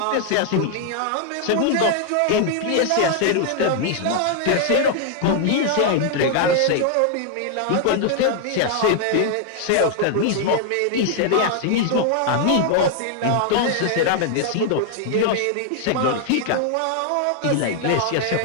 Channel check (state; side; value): different; both; correlation 0.00